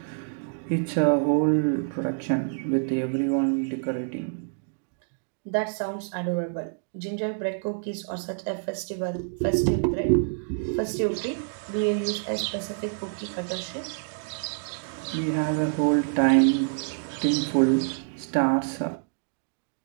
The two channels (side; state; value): left; silent; digital silence